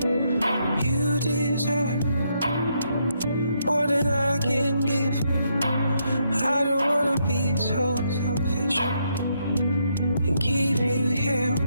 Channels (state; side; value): inverted; both; correlation -0.77